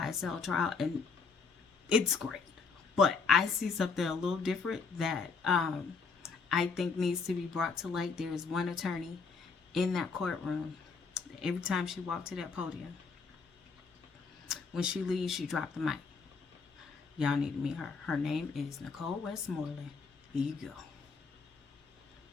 trial, and it's great. But I see something a little different that I think needs to be brought to light. There is one attorney in that courtroom. Every time she walked to that podium, when she leaves, she dropped the mic. Y'all need to meet her. Her name is Nicole Westmoreland. Here you go.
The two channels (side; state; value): right; quieter; 4.9 dB